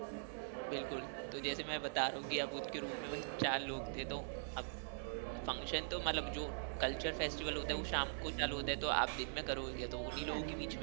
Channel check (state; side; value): silent; left; digital silence